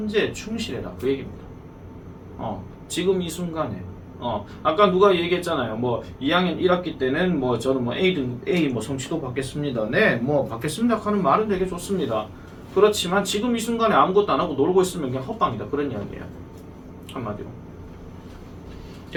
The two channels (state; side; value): identical; both; correlation 1.00